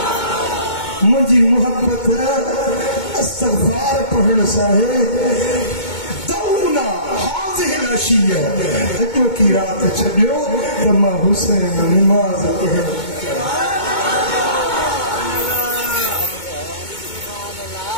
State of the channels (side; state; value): right; late; 2.2 ms